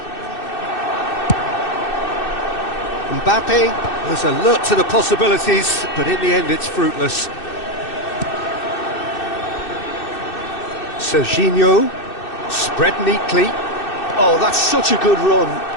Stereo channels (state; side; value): late; right; 2.6 ms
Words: Mbappe was alert to the possibilities, but in the end it's fruitless. Serginho, spread neatly. Oh, that's such a good run.